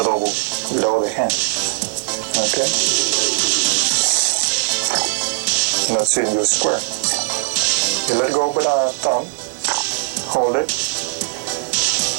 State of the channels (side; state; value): left; silent; digital silence